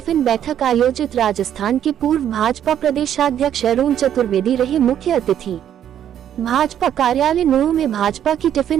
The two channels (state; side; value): quieter; left; 10.1 dB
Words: बैठक आयोजित। राजस्थान के पूर्व भाजपा प्रदेशाध्यक्ष अरुण चतुर्वेदी रहे मुख्य अतिथि। भाजपा कार्यालय नूंह में भाजपा की